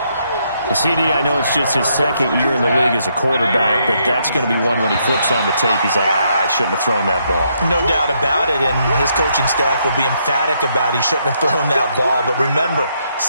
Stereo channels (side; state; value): both; inverted; correlation -0.75